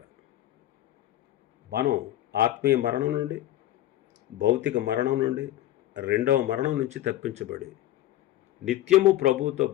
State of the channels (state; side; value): quieter; right; 14.1 dB